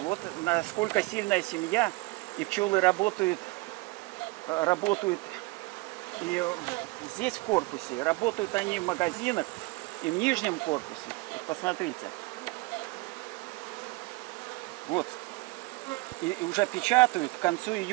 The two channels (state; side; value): quieter; left; 23.6 dB